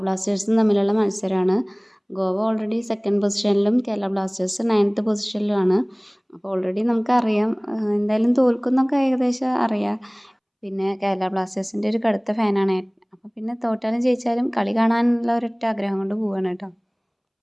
ബ്ലാസ്റ്റേഴ്സും തമ്മിലുള്ള മത്സരമാണ്. ഗോവ ഓൾറെഡി 2nd പൊസിഷനിലും കേരള ബ്ലാസ്റ്റേഴ്സ് 9th പൊസിഷനിലുമാണ്. അപ്പോൾ ഓൾറെഡി നമുക്കറിയാം എന്തായാലും തോൽക്കുന്നൊക്കെ ഏകദേശം അറിയാം. പിന്നെ കേരള ബ്ലാസ്റ്റേഴ്സിൻ്റെ ഒരു കടുത്ത ഫാനാണ്. അപ്പോൾ പിന്നെ തോറ്റാലും ജയിച്ചാലും കളി കാണാനുള്ള ഒരൊറ്റ ആഗ്രഹം കൊണ്ട് പോവാണ് കേട്ടോ.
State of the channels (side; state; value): both; identical; correlation 1.00